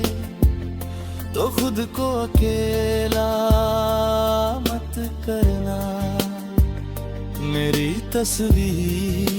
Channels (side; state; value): both; identical; correlation 1.00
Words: तो खुद को अकेला मत करना। मेरी